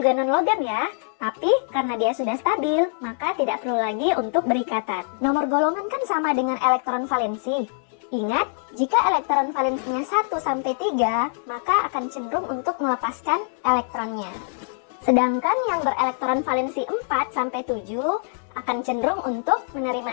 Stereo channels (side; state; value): right; silent; digital silence